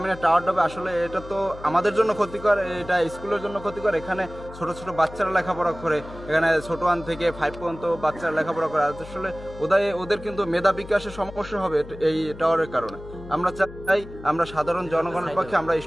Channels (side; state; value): left; noise; hum, 15 dB below the sound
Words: টাওয়ারটা হবে, আসলে এটা তো আমাদের জন্য ক্ষতিকর, এটা স্কুলের জন্য ক্ষতিকর। এখানে ছোট ছোট বাচ্চারা লেখাপড়া করে, এখানে ছোট 1 থেকে 5 পর্যন্ত বাচ্চারা লেখাপড়া করে। আসলে ওদের কিন্তু মেধা বিকাশের সমস্যা হবে এই টাওয়ারের কারণে। আমরা চাই, আমরা সাধারণ জনগণের পক্ষে, আমরা